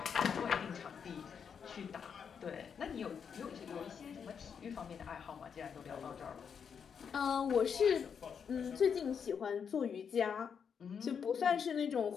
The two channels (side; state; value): right; quieter; 6.9 dB